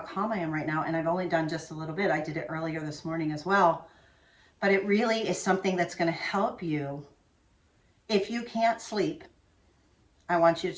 I am right now. And I've only done just a little bit. I did it earlier this morning as well. But it really is something that's going to help you. If you can't sleep, I want you to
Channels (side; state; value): both; identical; correlation 1.00